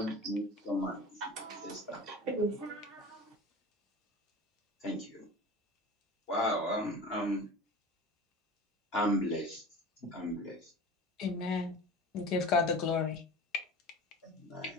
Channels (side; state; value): both; normal; correlation 0.35